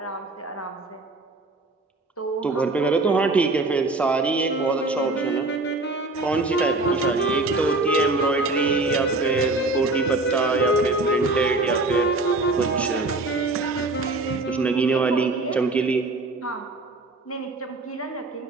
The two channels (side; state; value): left; quieter; 3.1 dB